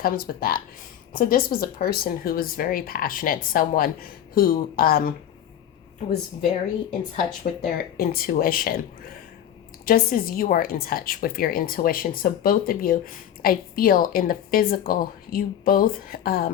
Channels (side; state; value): right; quieter; 10.3 dB